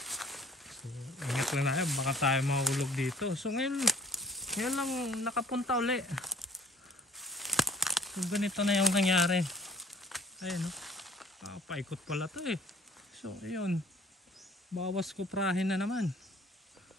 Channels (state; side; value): normal; both; correlation 0.54